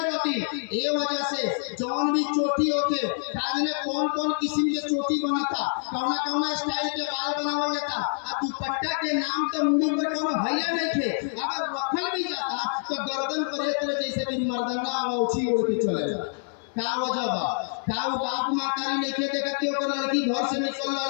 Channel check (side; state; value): right; silent; 57 dB below the other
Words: रहती। ये वजह से जौन भी चोटी होते काजने कौन कौन किस्म के चोटी बना था, कौना कौना स्टाइल के बाल बनावल जाता, आ दुपट्टा के नाम तो मुंह पर कोनो भैया नहीं थे, अगर रखल भी जाता तो गर्दन पर एक तरह जैसे कि मर्दाना औछी ओढ़ के चलेगा। का वजह बा, का वो बाप मातारी नहीं खे देखत कि ओकर लड़की घर से निकल